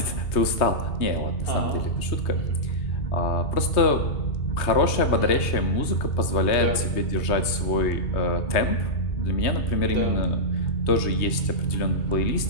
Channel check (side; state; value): right; late; 3.2 ms